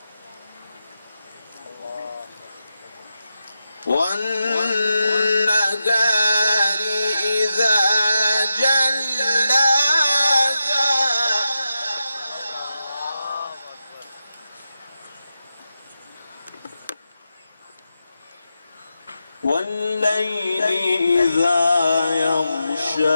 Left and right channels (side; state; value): both; inverted; correlation -0.89